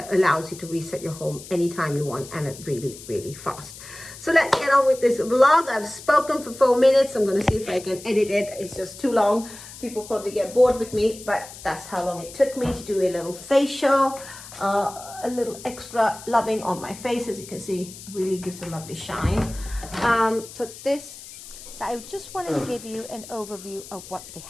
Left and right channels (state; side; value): noise; left; hiss, 15 dB below the sound